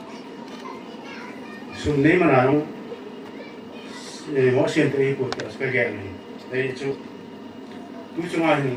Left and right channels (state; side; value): identical; both; correlation 1.00